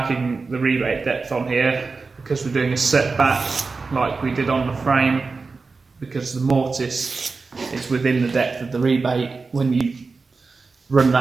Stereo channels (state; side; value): quieter; left; 4.2 dB